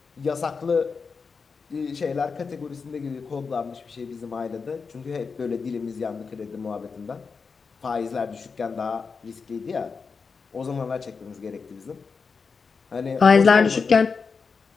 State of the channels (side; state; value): right; quieter; 5.1 dB